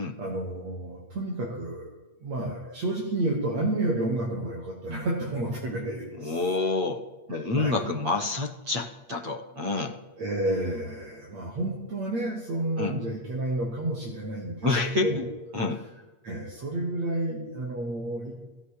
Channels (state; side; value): late; left; 8.6 ms